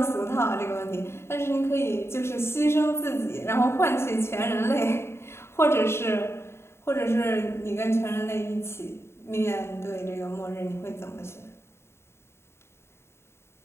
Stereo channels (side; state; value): right; late; 0.12 ms